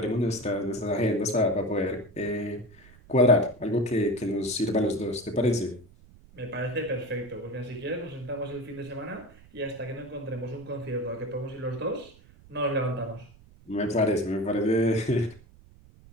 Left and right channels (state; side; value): noise; right; rumble, 24 dB below the sound